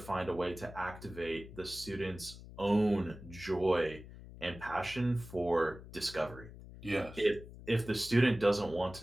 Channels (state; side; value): noise; left; hum, 15 dB below the sound